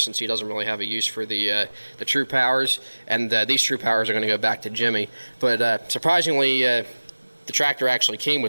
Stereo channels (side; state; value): both; inverted; correlation -1.00